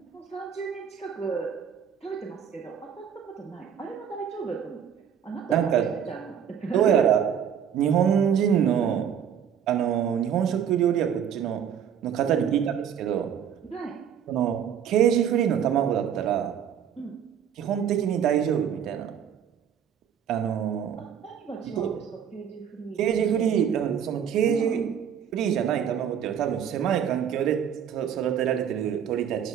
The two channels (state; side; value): quieter; left; 8.5 dB